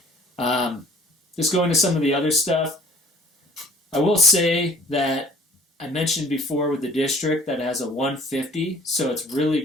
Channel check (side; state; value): both; normal; correlation 0.53